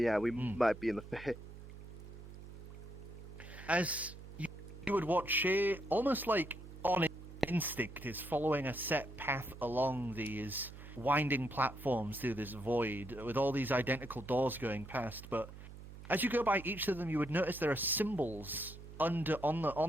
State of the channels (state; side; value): noise; right; hum, 14 dB below the sound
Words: might be in the Fae. As you would watch Shay, almost like on instinct, is following a set path along these winding platforms through this void, with all these identical doors going past. But as you go by each of them, you would notice there are symbols on